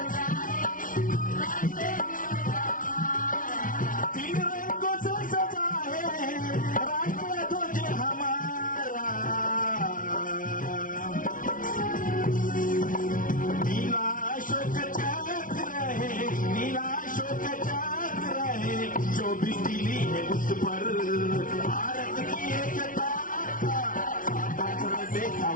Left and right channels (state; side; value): late; right; 0.38 ms